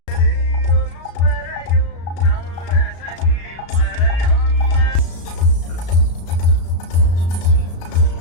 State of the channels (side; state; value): right; late; 35 ms